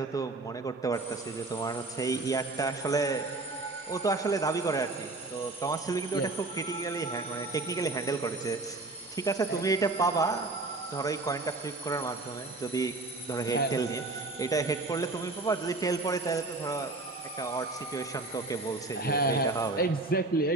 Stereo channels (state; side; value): quieter; left; 3.2 dB